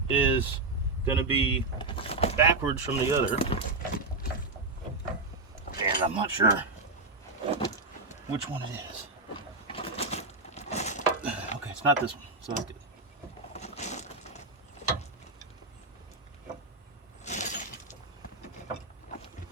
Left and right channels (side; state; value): left; quieter; 3.3 dB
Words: is going to be backwards from the other, and I'm not sure which one it is. Okay, it's not this one, so that's good.